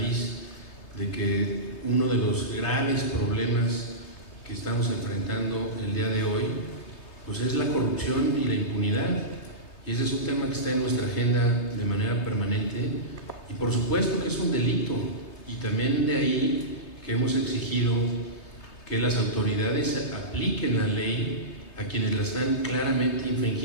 de que uno de los graves problemas que estamos enfrentando el día de hoy, pues es la corrupción y la impunidad, y ese es un tema que está en nuestra agenda de manera permanente, y por supuesto que es un delito, y también de ahí que hemos exigido que las autoridades apliquen la ley a quienes la están claramente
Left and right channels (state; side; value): late; right; 3.3 ms